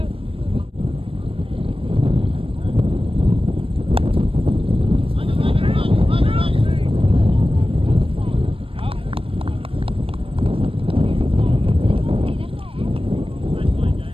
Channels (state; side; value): late; left; 0.27 ms